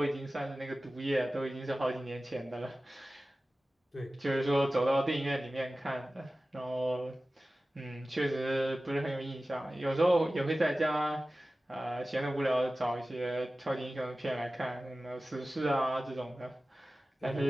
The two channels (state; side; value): normal; both; correlation 0.96